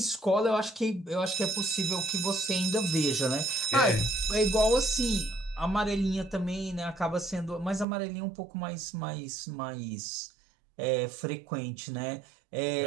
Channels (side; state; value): left; drops out; at 7.9 s